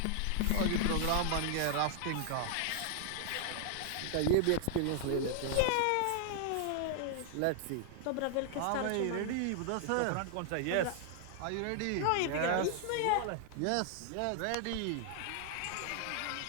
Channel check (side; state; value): both; different; correlation 0.00